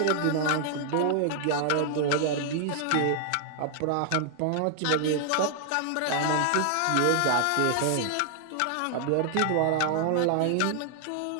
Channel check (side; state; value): both; different; correlation 0.00